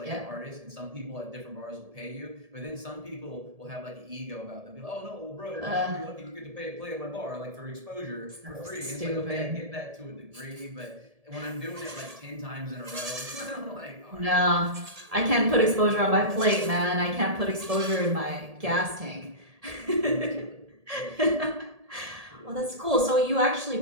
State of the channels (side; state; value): left; late; 1.7 ms